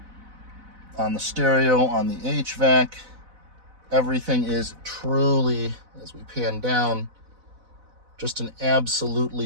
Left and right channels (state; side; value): late; left; 4.0 ms